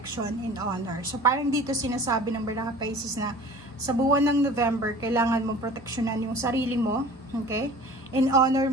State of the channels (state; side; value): normal; both; correlation 0.43